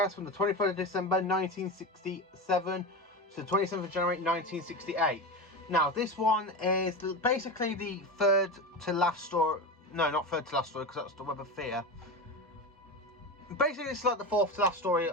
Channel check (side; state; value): both; normal; correlation 0.22